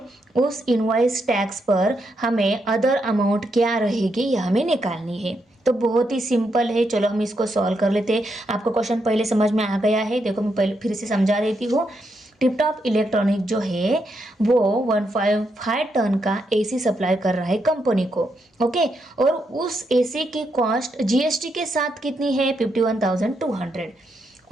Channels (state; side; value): normal; both; correlation 0.81